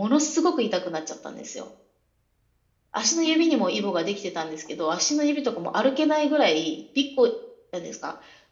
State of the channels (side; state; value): both; identical; correlation 1.00